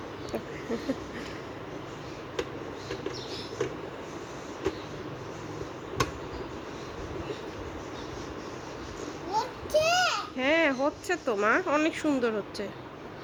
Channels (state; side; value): identical; both; correlation 1.00